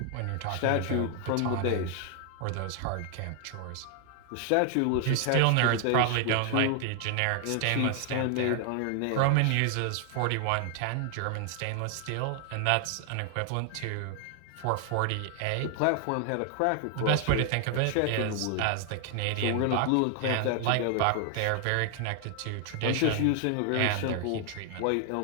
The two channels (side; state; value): both; different; correlation 0.00